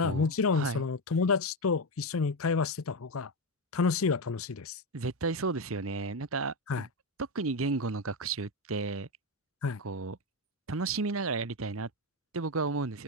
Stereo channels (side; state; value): both; normal; correlation 0.12